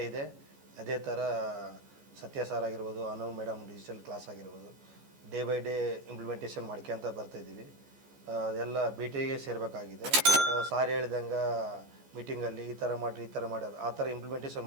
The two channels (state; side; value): late; left; 14 ms